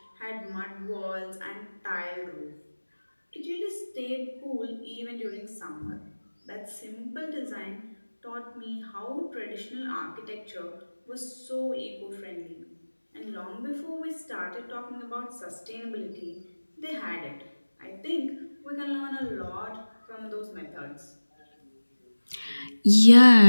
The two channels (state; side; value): inverted; both; correlation -1.00